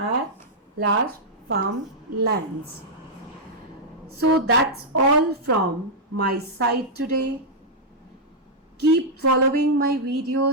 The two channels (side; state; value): both; normal; correlation -0.07